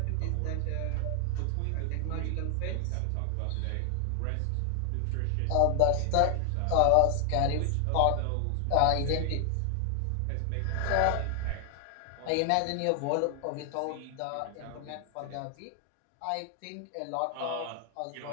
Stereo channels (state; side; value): different; both; correlation 0.00